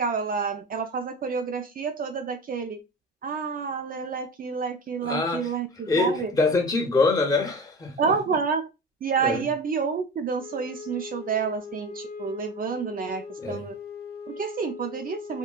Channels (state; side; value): normal; both; correlation 0.30